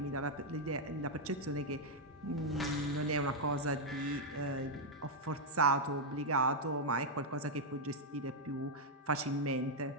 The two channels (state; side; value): normal; both; correlation -0.02